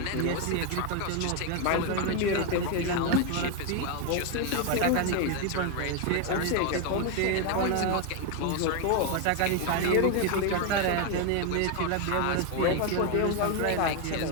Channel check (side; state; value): both; different; correlation 0.01